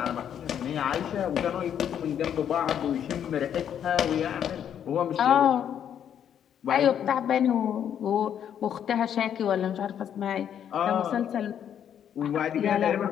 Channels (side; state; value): right; quieter; 9.2 dB